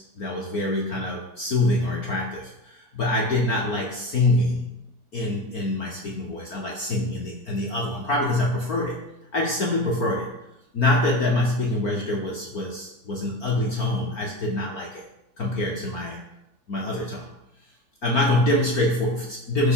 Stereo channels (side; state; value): right; late; 4.4 ms